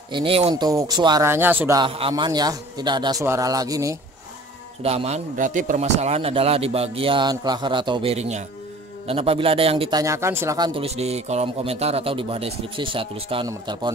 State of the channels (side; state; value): both; normal; correlation 0.48